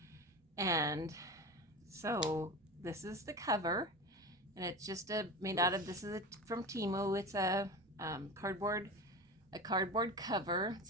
and so this is the cover, and it's just made out of, from Temu. It's cardboard cover.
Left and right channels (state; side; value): normal; both; correlation 0.28